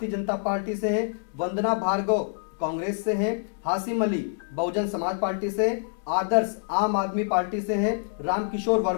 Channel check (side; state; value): right; silent; digital silence